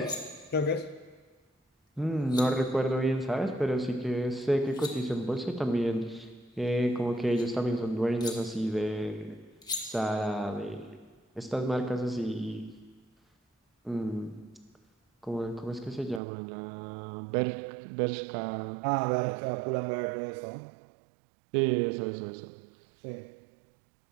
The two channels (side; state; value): left; drops out; at 16.2 s